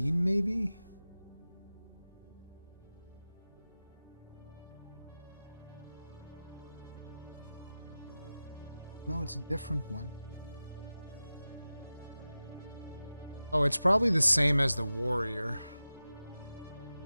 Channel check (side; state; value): both; inverted; correlation -0.95